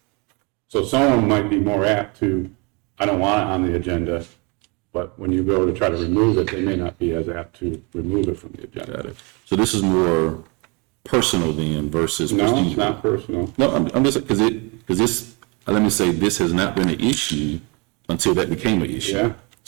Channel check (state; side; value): quieter; left; 30.2 dB